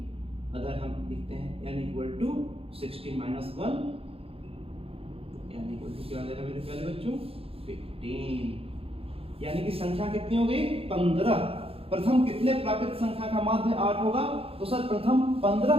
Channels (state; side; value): late; left; 0.27 ms